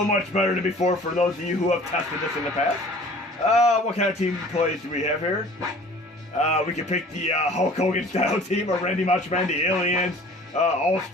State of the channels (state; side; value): normal; both; correlation 0.48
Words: much better than before for those of you who have tested this in the past. What kind of team plays do we have here? We can pick the Hulk Hogan style team, or Randy Macho Man, the Aliens,